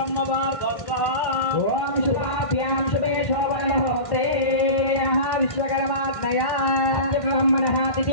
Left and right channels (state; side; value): late; right; 1.5 ms